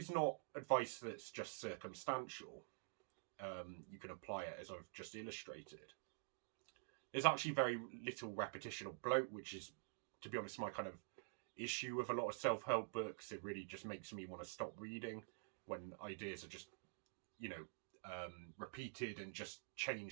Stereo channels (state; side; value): silent; left; digital silence